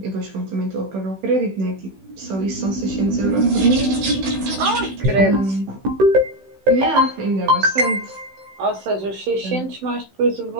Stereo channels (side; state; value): left; late; 16 ms